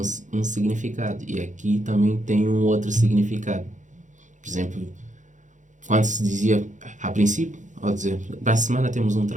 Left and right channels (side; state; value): left; late; 0.36 ms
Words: significado. E aqui também tem um outro significado. Por exemplo, quando se dizia, a princípio, ao dizer, para a semana temos um